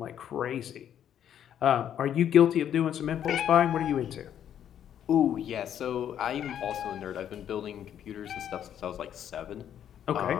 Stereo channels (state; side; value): quieter; right; 9.8 dB